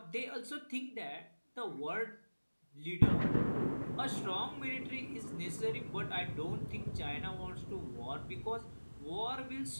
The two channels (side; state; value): both; inverted; correlation -1.00